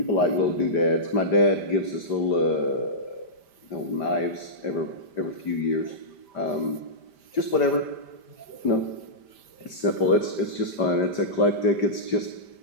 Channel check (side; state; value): right; late; 5.1 ms